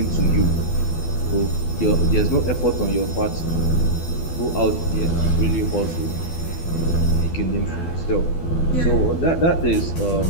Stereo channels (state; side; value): late; right; 12 ms